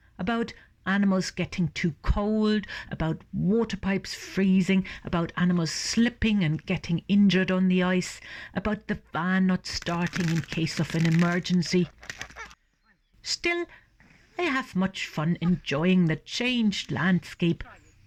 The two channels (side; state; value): both; identical; correlation 1.00